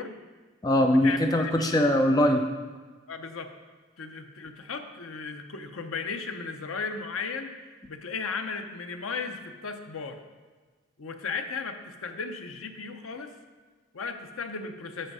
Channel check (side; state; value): both; normal; correlation 0.61